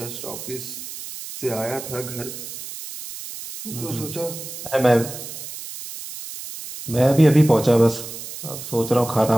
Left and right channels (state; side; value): noise; right; hiss, 11 dB below the sound